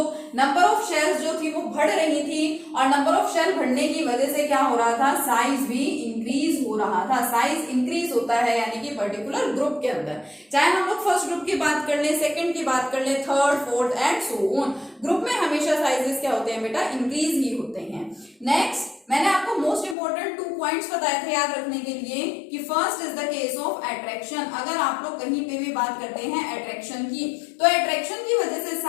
number of shells जो थी वो बढ़ रही थी और नंबर ऑफ शेल बढ़ने की वजह से क्या हो रहा था, साइज भी इंक्रीज हो रहा था। साइज इंक्रीज होता है यानी कि पर्टिकुलर ग्रुप के अंदर, चाहे हम लोग फर्स्ट ग्रुप की बात कर ले, सेकंड की बात कर ले, third, fourth and so on, group में हमेशा साइजेस क्या होते हैं बेटा, इंक्रीज ही होते हैं। नेक्स्ट मैंने आपको मोस्ट इंपोर्टेंट 2 पॉइंट्स बताए थे याद रखने के लिए कि first is the case of attraction. अगर आप लोग कहीं पे भी बात करते हैं अट्रैक्शन की, तो अट्रैक्शन की वजह से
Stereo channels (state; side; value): drops out; right; at 20.0 s